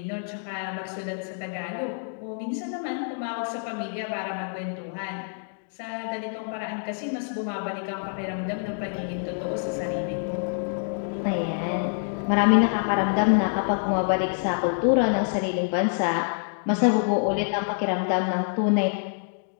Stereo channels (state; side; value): silent; right; digital silence